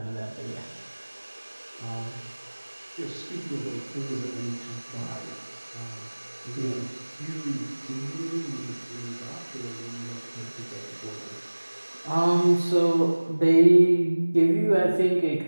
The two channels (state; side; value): inverted; both; correlation -1.00